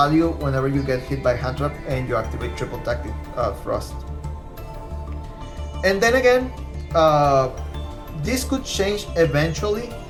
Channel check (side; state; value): both; identical; correlation 1.00